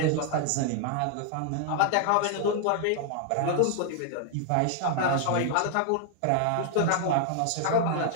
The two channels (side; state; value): both; different; correlation 0.00